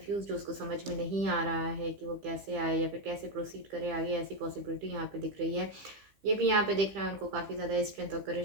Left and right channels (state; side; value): late; left; 15 ms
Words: जो उसको समझ में नहीं आ रहा है कि वो कैसे आए या फिर कैसे प्रोसीड करे आगे, ऐसी पॉसिबिलिटी यहाँ पे दिख रही है। ये भी यहाँ पे दिख रहा है उनको काफ़ी ज़्यादा स्ट्रेंथ और